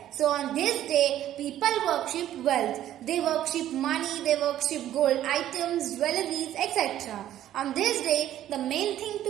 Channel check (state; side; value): quieter; left; 12.3 dB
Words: So on this day, people worship wealth. They worship money, they worship gold items, jewelries, etc. On this day, the main thing to